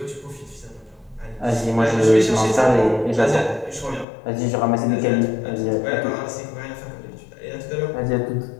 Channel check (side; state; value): right; drops out; at 4.0 s